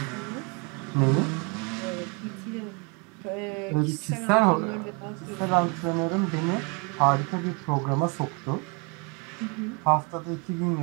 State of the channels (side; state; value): left; quieter; 32.5 dB